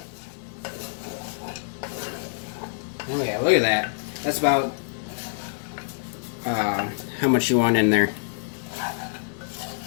Oh yeah, look at that. That's about how much you want in there.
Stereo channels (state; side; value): silent; right; 61 dB below the other